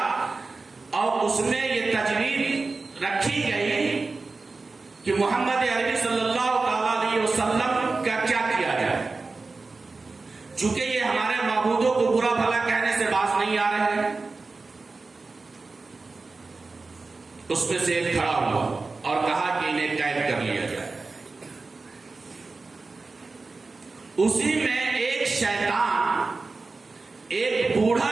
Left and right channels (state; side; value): quieter; left; 3.8 dB